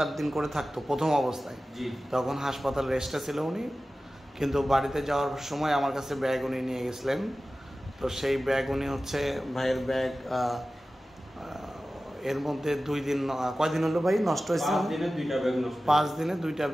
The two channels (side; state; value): both; normal; correlation 0.95